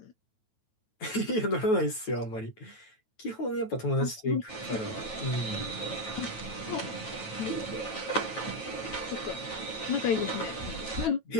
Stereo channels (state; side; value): late; right; 9.2 ms